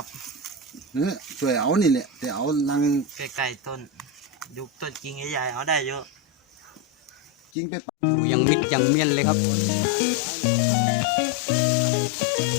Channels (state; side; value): drops out; right; at 7.5 s